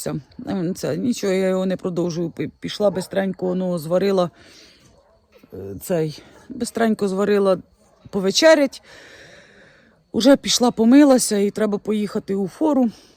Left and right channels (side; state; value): both; identical; correlation 1.00